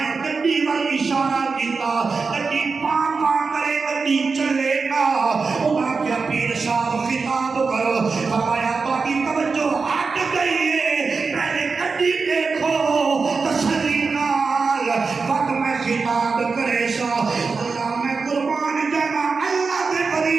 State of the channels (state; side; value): quieter; left; 4.6 dB